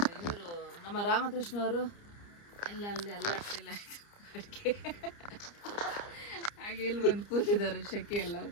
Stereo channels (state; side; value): late; right; 29 ms